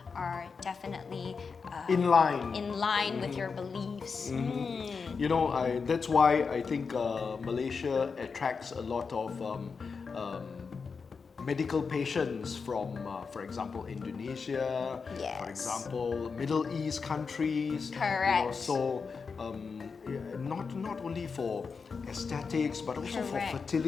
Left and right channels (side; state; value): right; quieter; 5.2 dB